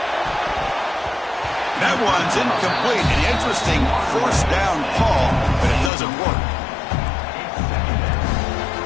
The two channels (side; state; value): right; drops out; at 5.9 s